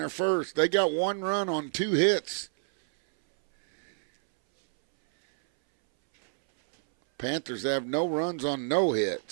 first. They got 1 run on 2 hits. Panthers have no runs on no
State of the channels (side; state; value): left; silent; 60 dB below the other